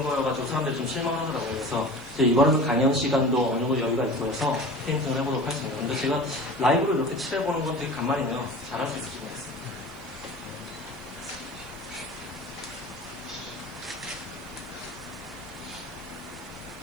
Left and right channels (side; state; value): right; noise; hiss, 24 dB below the sound